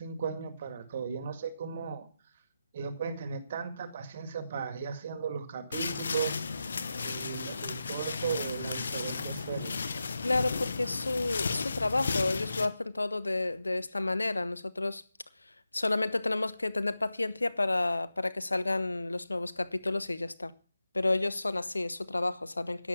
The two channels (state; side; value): inverted; both; correlation -0.90